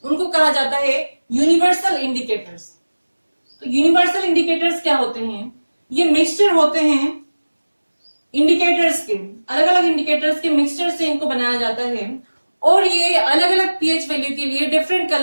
उनको कहा जाता है यूनिवर्सल इंडिकेटर्स। तो यूनिवर्सल इंडिकेटर्स क्या होते हैं, ये मिक्सचर होते हैं इंडिकेटर्स के, अलग अलग इंडिकेटर्स के मिक्सचर से इनको बनाया जाता है। और ये अलग अलग pH वैल्यू के लिए डिफरेंट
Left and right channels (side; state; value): both; inverted; correlation -1.00